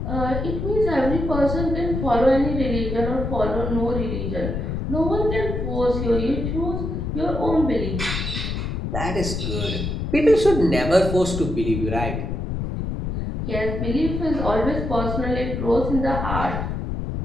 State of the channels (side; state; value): left; noise; rumble, 3 dB below the sound